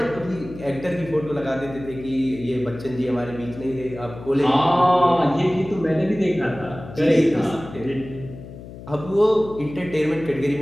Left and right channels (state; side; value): noise; left; hum, 14 dB below the sound